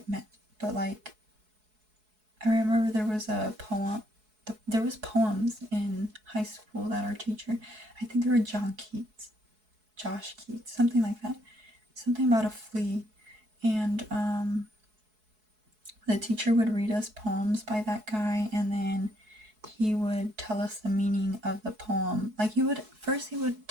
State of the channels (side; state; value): left; late; 4.7 ms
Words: meant, but like, I remember there was a poem. There was poems in high school that our teacher, I think they were Josh Keats, something like that, something about a flea, and the teacher would read us poems by that guy, and then he would tell us the meaning of the poem. Like he would